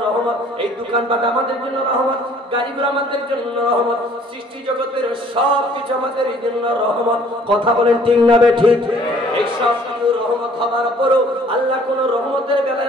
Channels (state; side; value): normal; both; correlation 0.57